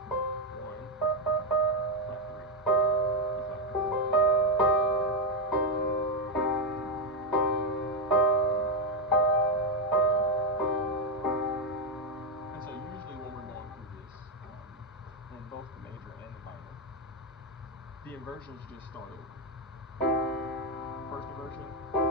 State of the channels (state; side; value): normal; both; correlation 0.02